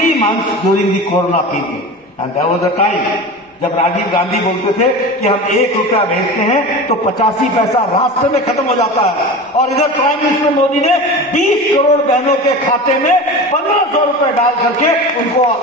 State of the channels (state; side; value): normal; both; correlation 0.31